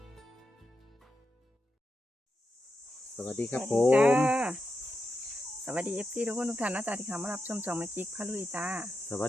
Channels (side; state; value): both; normal; correlation 0.87